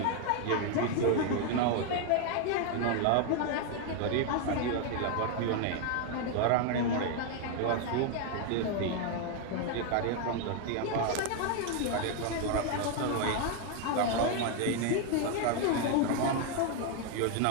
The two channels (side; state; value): both; different; correlation 0.01